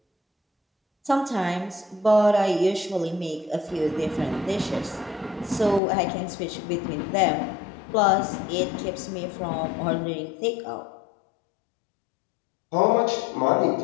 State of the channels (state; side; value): drops out; right; at 5.8 s